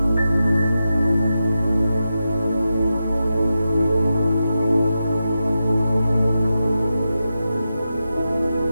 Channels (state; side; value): inverted; both; correlation -0.90